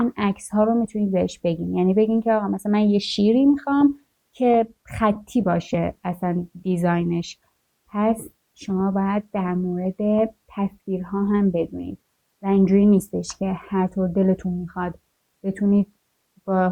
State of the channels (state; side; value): identical; both; correlation 1.00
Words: عکس ها رو میتونید بهش بگین. یعنی بگین که آقا مثلا من یه شیری میخوام که خطی باشه اصلا دیزاینش. پس شما باید در مورد تصویرها هم بدونید و اینجوری نیستش که هر طور دلتون میخواد بتونید با